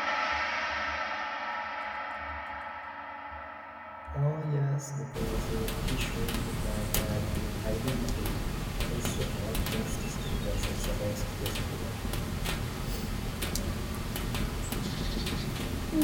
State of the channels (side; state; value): both; identical; correlation 1.00